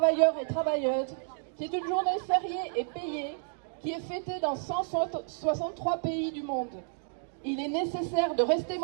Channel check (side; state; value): left; silent; digital silence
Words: et travailleuses, qui est une journée fériée et payée, qui est fêtée dans 163 pays du monde. Il est nécessaire de rester